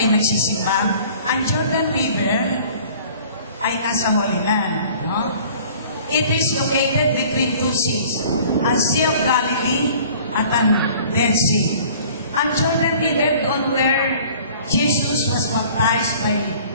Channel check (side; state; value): both; inverted; correlation -0.49